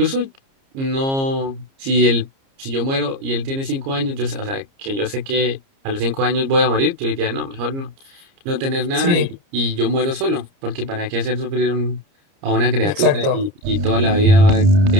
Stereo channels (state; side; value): late; left; 30 ms